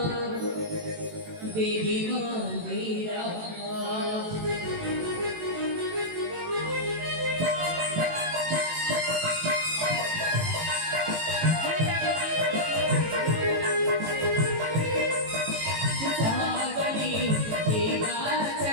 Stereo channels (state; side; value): late; left; 18 ms